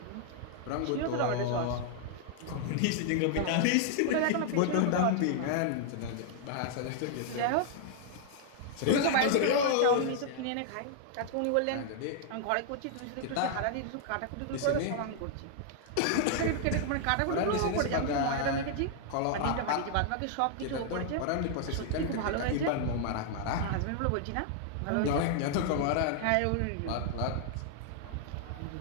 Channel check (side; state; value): both; different; correlation -0.01